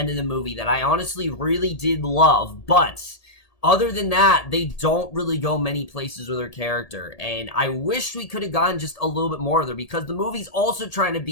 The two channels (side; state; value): right; late; 1.8 ms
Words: of the movie that I honestly really did love. But other than that, they don't really go many places with her character, and I wish we could have gotten just a little bit more of her, because the movie's also trying to